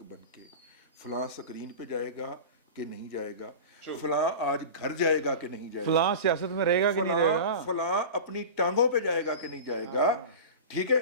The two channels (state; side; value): inverted; both; correlation -0.31